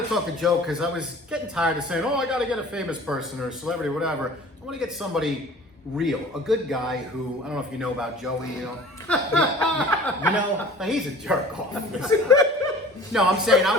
to talk to Joe because I was getting tired of saying, "Oh, I got to get a famous person or a celebrity, or whatever." I want to get somebody real, a good guy who I don't know if you know about Joey. You know, he's a jerk off. No, I'm saying I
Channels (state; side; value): normal; both; correlation 0.45